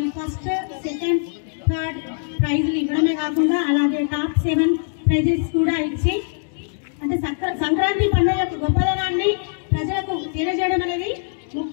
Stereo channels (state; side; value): silent; right; digital silence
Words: ఫస్ట్, సెకండ్, థర్డ్ ప్రైజులు ఇవ్వడమే కాకుండా అలాగే టాప్ 7 ప్రైజెస్ కూడా ఇచ్చి అంటే సంక్రాంతి పండుగ యొక్క గొప్పదనాన్ని ప్రజలకు తెలియజేయడం అనేది